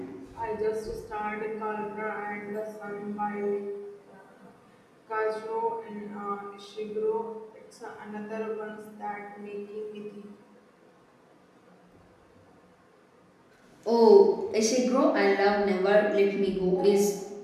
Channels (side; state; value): both; identical; correlation 1.00